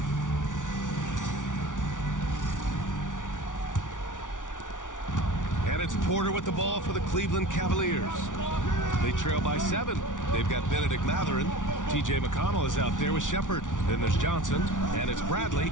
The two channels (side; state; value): right; late; 0.87 ms